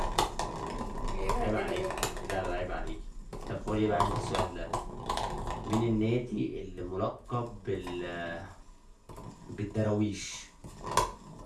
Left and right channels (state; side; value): identical; both; correlation 1.00